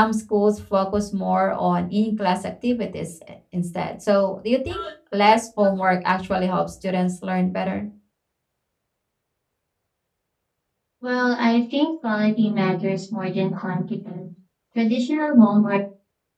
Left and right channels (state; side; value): identical; both; correlation 1.00